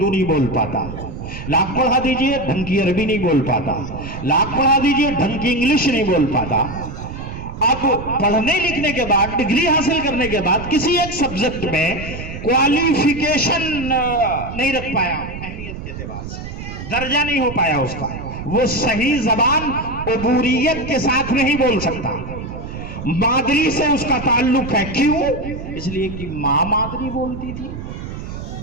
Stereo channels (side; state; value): right; noise; rumble, 9 dB below the sound